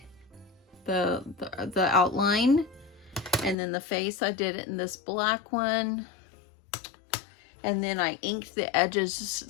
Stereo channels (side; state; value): right; drops out; at 3.6 s